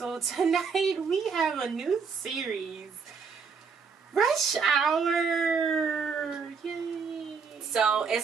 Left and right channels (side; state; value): left; quieter; 5.6 dB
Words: tonight we have a new series, Rush Hour. Yay! So